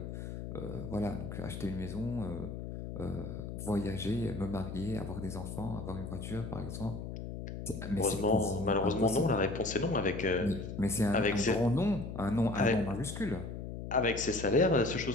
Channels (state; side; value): noise; left; hum, 7 dB below the sound